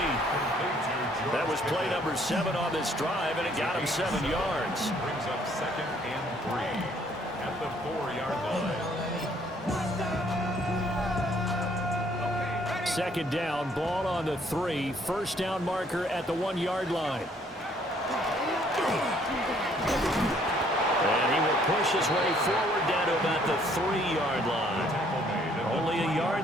That was play number 7 on this drive, and it got him 7 yards. Brings up 2nd and 3 at the 4-yard line. Second down, ball on the 3. First down marker at the 1-yard line. And he will push his way forward down to about the 3-yard line. Only a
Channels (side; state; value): both; normal; correlation 0.63